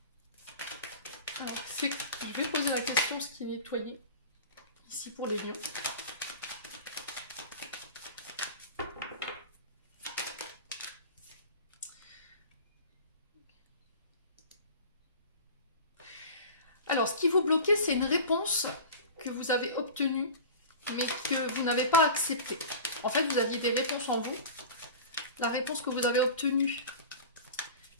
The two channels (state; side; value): inverted; both; correlation -0.35